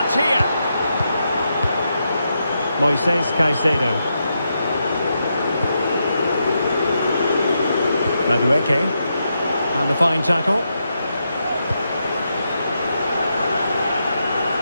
here. Moises Caicedo. Madueke. And a fine tackle.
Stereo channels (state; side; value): inverted; both; correlation -0.84